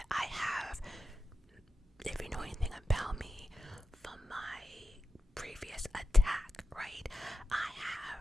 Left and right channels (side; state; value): both; normal; correlation 0.90